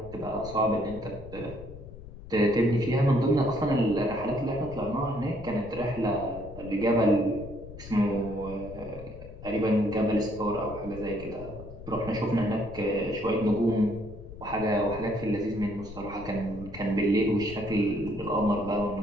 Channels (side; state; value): left; noise; rumble, 14 dB below the sound